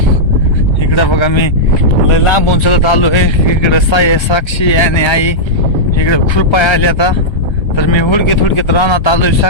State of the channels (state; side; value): late; right; 1.3 ms